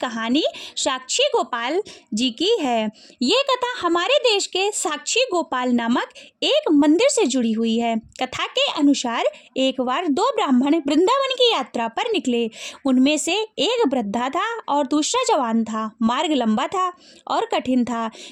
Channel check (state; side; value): identical; both; correlation 1.00